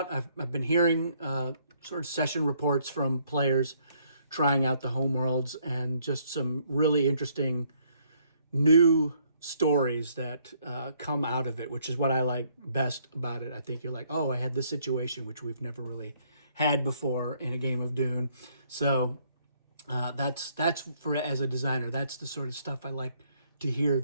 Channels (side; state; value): both; inverted; correlation -0.68